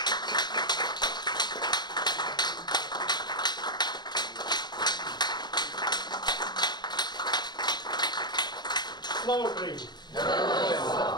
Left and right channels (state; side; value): late; right; 0.21 ms